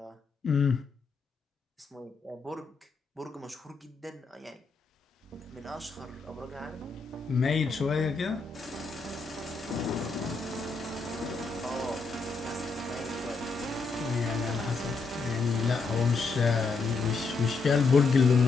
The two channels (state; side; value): quieter; right; 4.2 dB